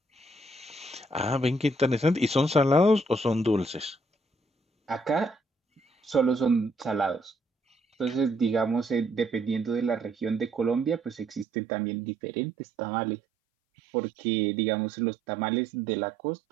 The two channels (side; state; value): left; drops out; at 11.5 s